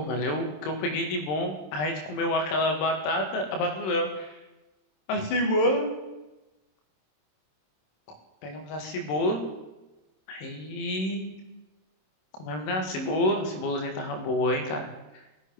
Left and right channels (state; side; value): late; right; 27 ms